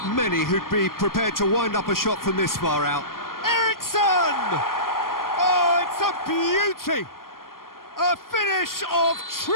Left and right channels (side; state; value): right; late; 0.91 ms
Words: many who'd be prepared to wind up a shot from this far out. Eriksson! Oh, it's a beauty! A finish of